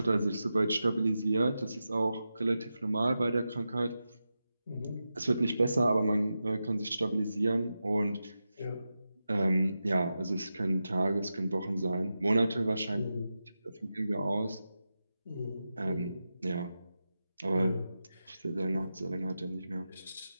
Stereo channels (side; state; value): both; inverted; correlation -0.90